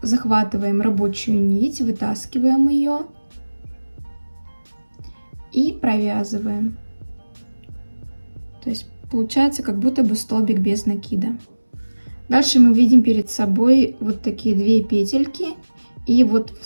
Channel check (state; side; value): inverted; both; correlation -1.00